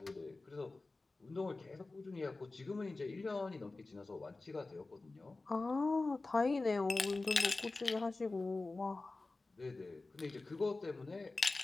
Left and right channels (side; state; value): right; quieter; 3.4 dB